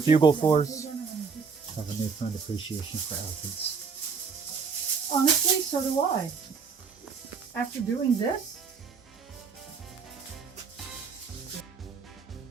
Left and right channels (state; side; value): quieter; left; 5.5 dB